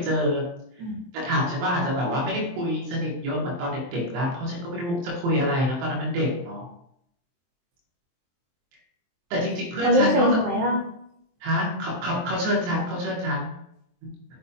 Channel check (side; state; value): left; late; 23 ms